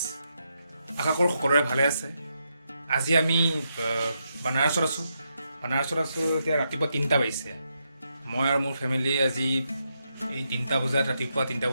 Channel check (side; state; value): both; inverted; correlation -0.82